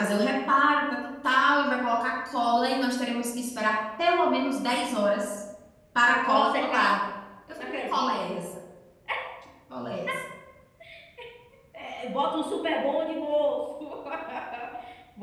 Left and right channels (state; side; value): identical; both; correlation 1.00